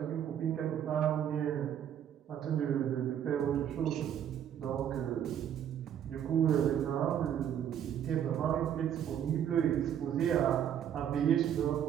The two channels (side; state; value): left; quieter; 9.6 dB